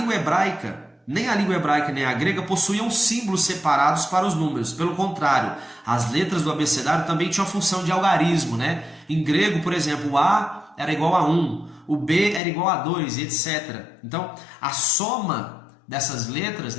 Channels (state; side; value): drops out; right; at 12.4 s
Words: hebraica, nem a língua hebraica nem a grega possuíam símbolos separados para os números. Pelo contrário, as letras do abecedário também tinham a função de algarismo, né? Em grego, por exemplo, o A era igual a 1, o B era igual a 2, etc. Então, a soma dessas letras,